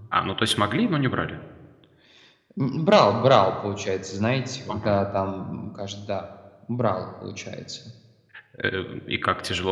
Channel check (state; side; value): identical; both; correlation 1.00